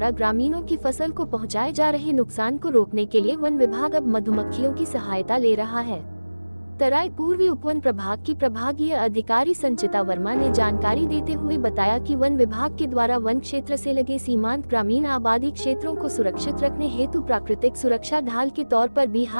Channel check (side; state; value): both; inverted; correlation -1.00